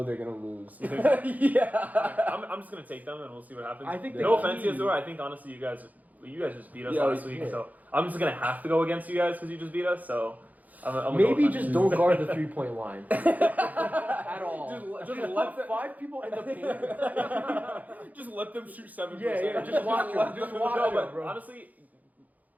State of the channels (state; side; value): late; left; 0.079 ms